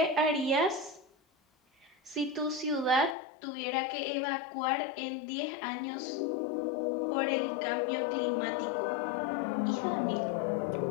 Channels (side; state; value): right; drops out; at 3.2 s